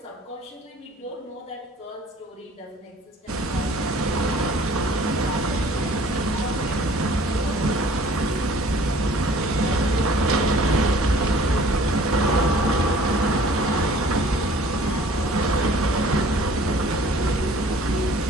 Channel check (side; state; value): both; normal; correlation 0.52